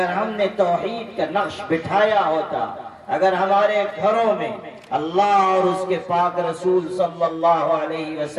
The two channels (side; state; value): both; identical; correlation 1.00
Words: ہم نے توحید کا نقش بٹھایا ہوتا، اگر ہمارے گھروں میں اللہ اور اس کے پاک رسول صلی اللہ علیہ